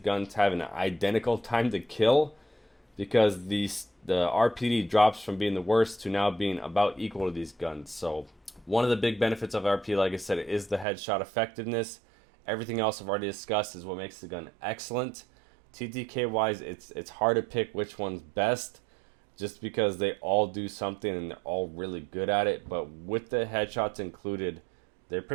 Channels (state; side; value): drops out; left; at 10.9 s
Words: have an identical time to kill because the RPD drops from being the worst to now being about equal to these guns. So one of the big benefits of RPD, like I said, is the headshot effectiveness. Everything else I've already discussed is what makes the gun excellent. TTK wise, it's hard to pick which one's best, just because they all do something and they're all really good at it. But with the headshots included, they